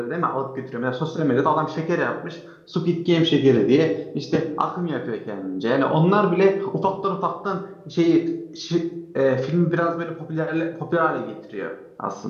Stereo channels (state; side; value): identical; both; correlation 1.00